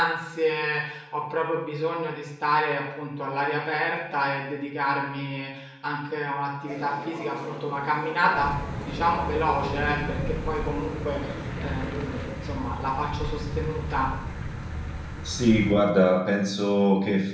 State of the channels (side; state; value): both; identical; correlation 1.00